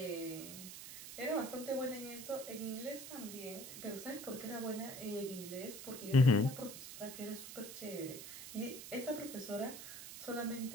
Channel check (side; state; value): right; noise; hiss, 10 dB below the sound